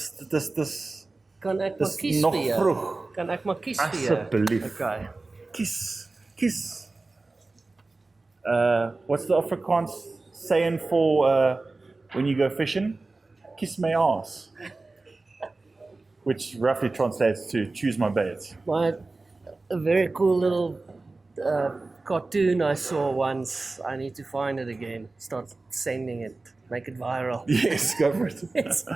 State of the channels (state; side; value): quieter; left; 3.4 dB